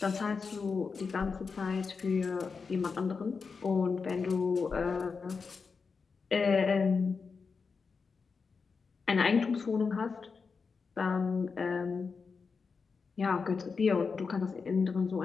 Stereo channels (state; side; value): quieter; right; 5.0 dB